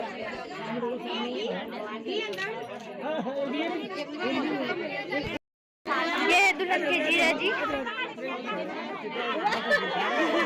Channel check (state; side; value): identical; both; correlation 1.00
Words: ये है दुल्हन के जीजा जी।